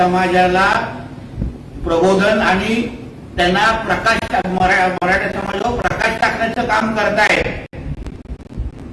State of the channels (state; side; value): identical; both; correlation 1.00